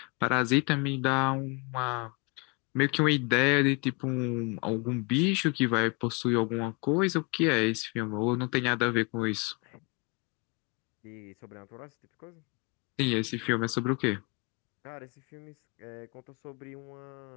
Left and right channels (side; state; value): right; quieter; 29.9 dB